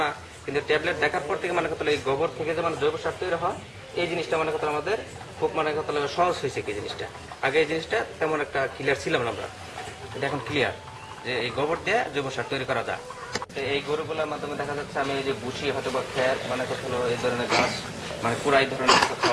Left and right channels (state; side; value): identical; both; correlation 1.00